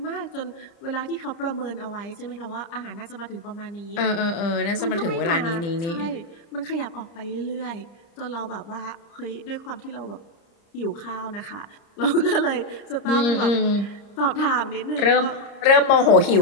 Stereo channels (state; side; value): late; right; 30 ms